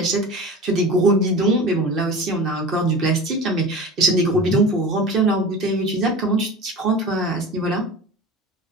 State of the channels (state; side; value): normal; both; correlation 0.34